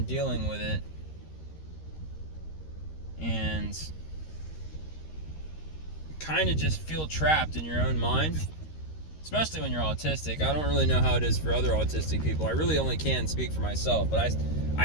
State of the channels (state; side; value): late; right; 13 ms